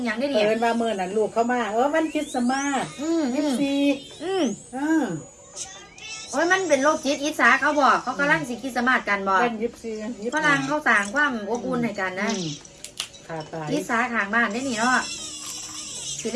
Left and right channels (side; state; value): both; identical; correlation 1.00